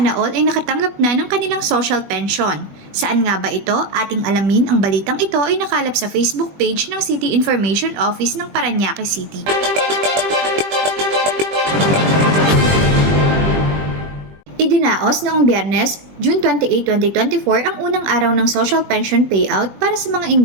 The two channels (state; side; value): late; left; 20 ms